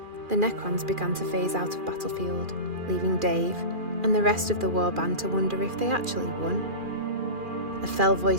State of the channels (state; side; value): late; left; 2.4 ms